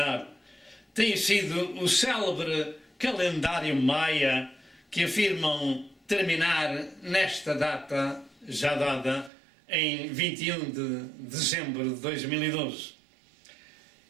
tem sido o célebre calendário maia que afirmam terminar nesta data já dada em 21 de dezembro de 2012.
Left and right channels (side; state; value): left; drops out; at 9.3 s